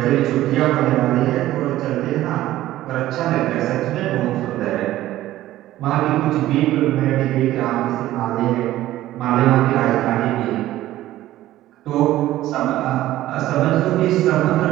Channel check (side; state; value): left; quieter; 14.8 dB